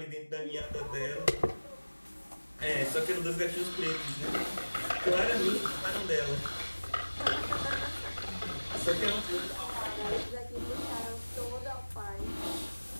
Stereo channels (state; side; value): inverted; both; correlation -1.00